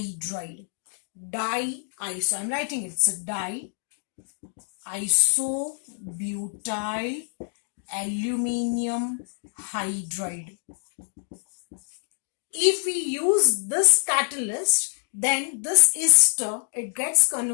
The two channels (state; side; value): silent; right; 61 dB below the other